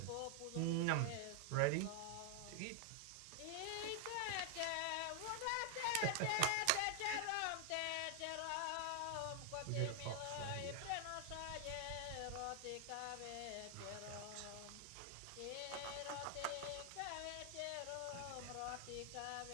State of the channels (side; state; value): both; different; correlation 0.00